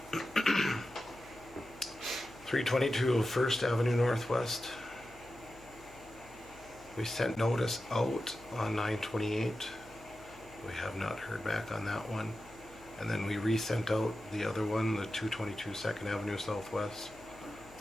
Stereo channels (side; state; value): left; noise; hum, 23 dB below the sound